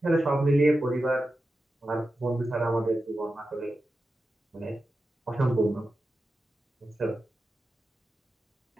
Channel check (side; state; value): both; normal; correlation 0.91